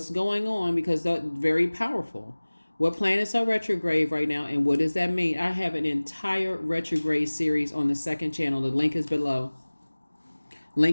going on? Because they're very powerful. What planets are retrograde right now, and what does that mean? I have an entire retrograde series on the second channel. The link is below.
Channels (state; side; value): inverted; both; correlation -1.00